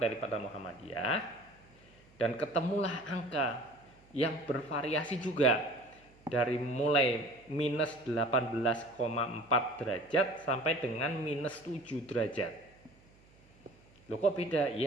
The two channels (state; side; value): noise; right; hum, 28 dB below the sound